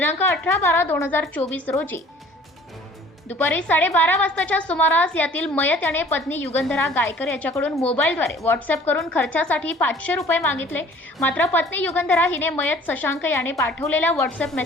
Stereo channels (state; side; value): normal; both; correlation 0.51